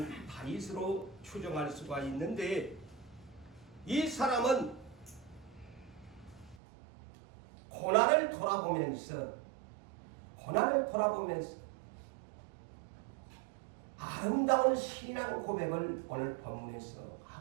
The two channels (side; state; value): left; drops out; at 6.6 s